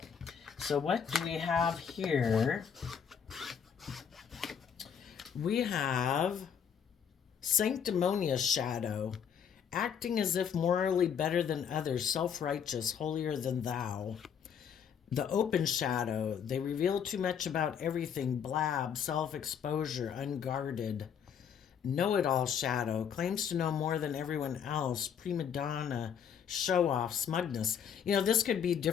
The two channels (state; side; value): quieter; right; 7.8 dB